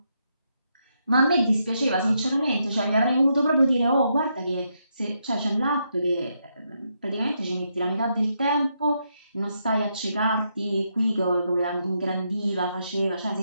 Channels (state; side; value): inverted; both; correlation -0.80